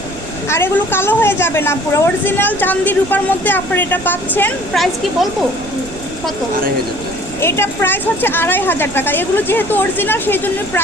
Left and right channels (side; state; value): right; noise; rumble, 15 dB below the sound